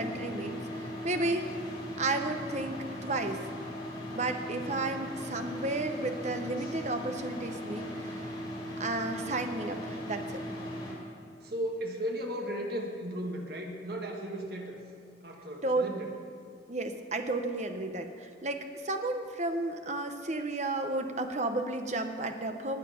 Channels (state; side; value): normal; both; correlation 0.32